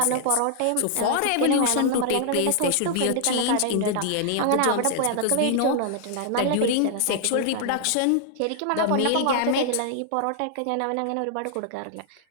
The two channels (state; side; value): different; both; correlation -0.01